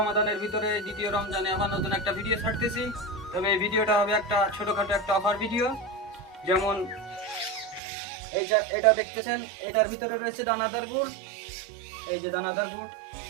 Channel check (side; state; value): left; drops out; at 7.8 s